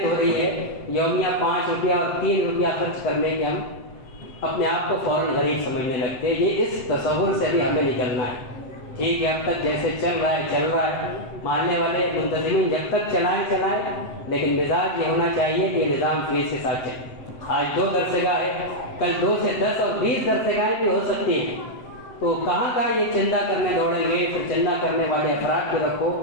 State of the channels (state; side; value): late; right; 7.9 ms